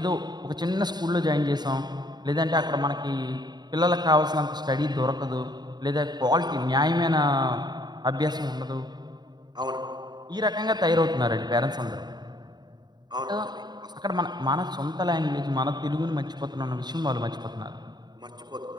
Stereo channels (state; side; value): late; left; 0.20 ms